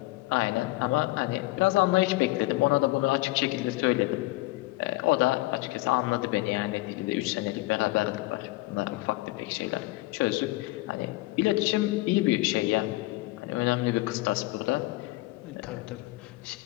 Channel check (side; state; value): right; quieter; 20.2 dB